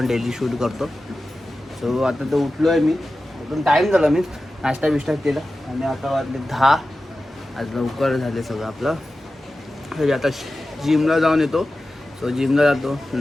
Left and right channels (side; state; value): both; normal; correlation 0.94